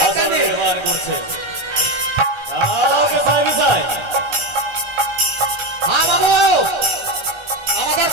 নির্মাণ করছে। যাও বিছায় বিছায়। হ্যাঁ বাবু আমাদের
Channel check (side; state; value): right; late; 1.3 ms